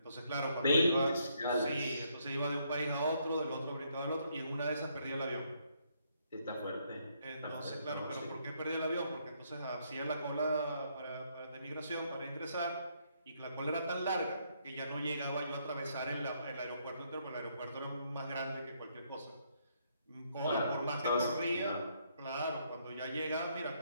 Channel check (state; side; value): inverted; both; correlation -0.72